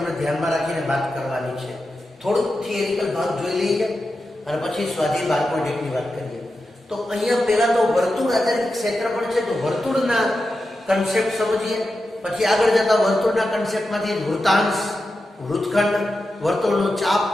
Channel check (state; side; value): normal; both; correlation 0.90